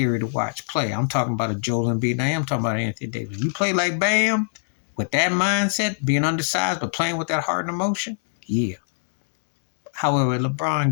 to watch play. I'm talking about a Joel Embiid. Now I'm talking about Anthony Davis. You play like Bam with that mindset, being undersized, but playing with that heart and emotion, yeah. However, LeBron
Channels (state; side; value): silent; right; digital silence